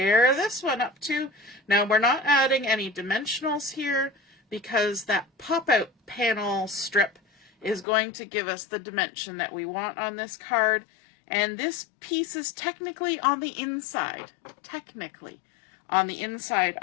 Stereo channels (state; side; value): drops out; right; at 7.9 s